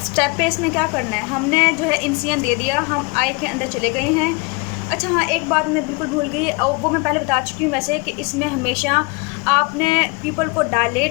स्टेप है इसमें क्या करना है, हमने जो है इंसिजन दे दिया, हम आई के अंदर चले गए हैं। अच्छा हाँ, एक बात मैं बिल्कुल भूल गई, और वो मैं पहले बता चुकी हूँ वैसे, कि इसमें हमेशा आपने पीपल को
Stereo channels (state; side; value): quieter; right; 29.5 dB